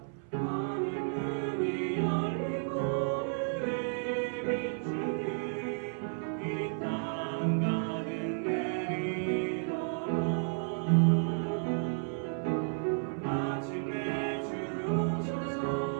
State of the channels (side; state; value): left; silent; 56 dB below the other